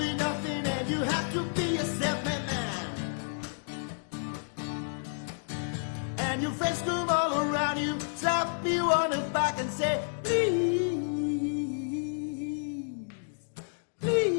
nothing and you have to be a self-made man. And your friends come all around you, slap you on the back and say, please.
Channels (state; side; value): silent; right; digital silence